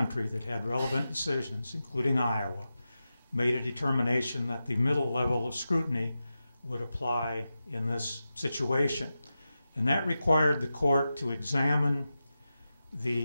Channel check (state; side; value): inverted; both; correlation -0.91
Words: that had relevant decisions, including Iowa, made a determination that the middle level of scrutiny would apply in this situation. And that required the court to examine